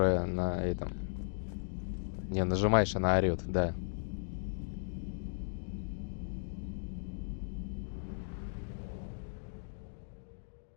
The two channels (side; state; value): right; silent; digital silence